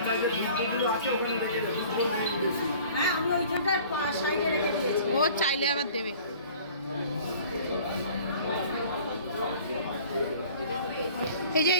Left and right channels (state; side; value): inverted; both; correlation -0.49